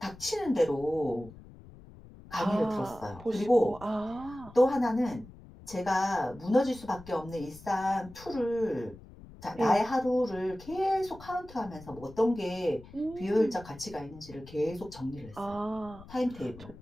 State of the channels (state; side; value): noise; left; rumble, 19 dB below the sound